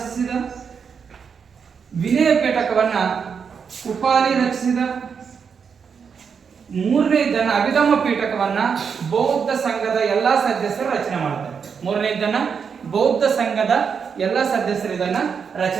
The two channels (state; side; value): quieter; left; 6.4 dB